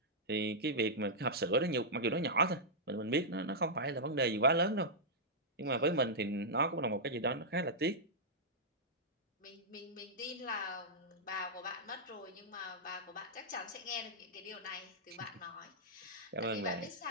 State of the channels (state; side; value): normal; both; correlation -0.09